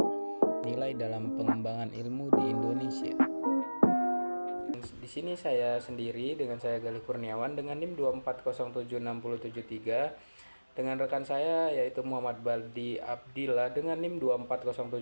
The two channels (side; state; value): both; inverted; correlation -1.00